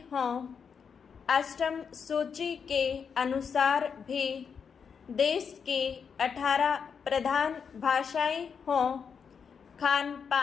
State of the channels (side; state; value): right; quieter; 6.5 dB